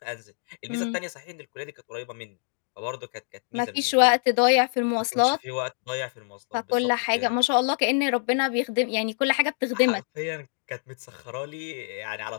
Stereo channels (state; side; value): silent; right; 61 dB below the other